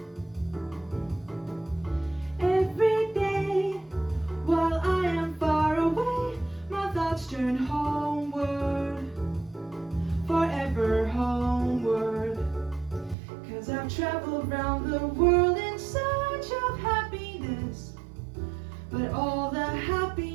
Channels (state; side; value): drops out; left; at 13.2 s